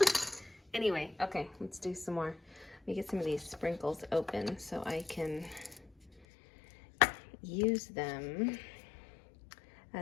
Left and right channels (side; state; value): right; drops out; at 6.2 s